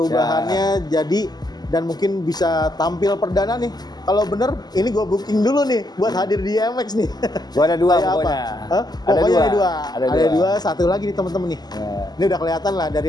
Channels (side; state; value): right; late; 0.20 ms